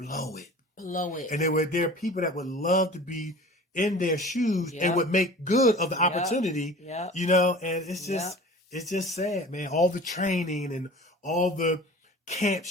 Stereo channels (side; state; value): both; normal; correlation 0.41